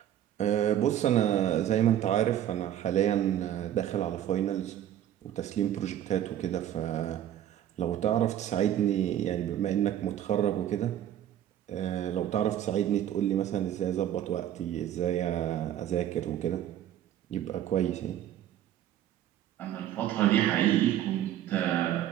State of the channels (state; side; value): quieter; left; 11.3 dB